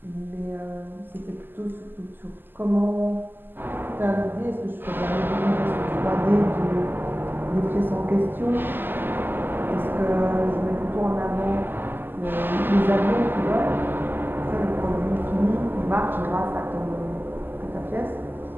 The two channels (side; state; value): left; late; 0.093 ms